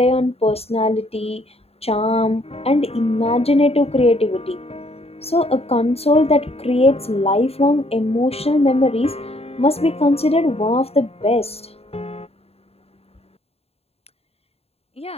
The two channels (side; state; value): right; late; 0.29 ms